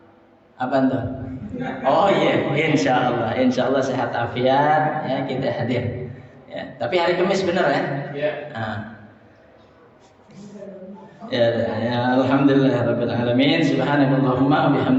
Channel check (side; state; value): both; identical; correlation 1.00